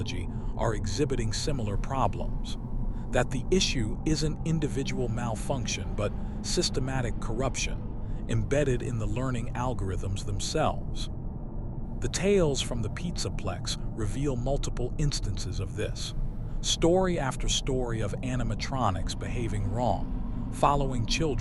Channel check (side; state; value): both; identical; correlation 1.00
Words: are exhibiting similar problems, that the issue isn't individual malfunction but systematic corruption embedded in the learning algorithms themselves. The tales from the Pizzaplex reveal multiple instances of this. Story after story of animatronics behaving wrong, following